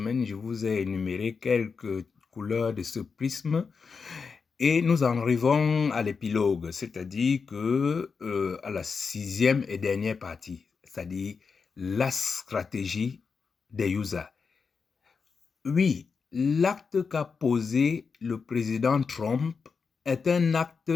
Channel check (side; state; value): right; quieter; 5.3 dB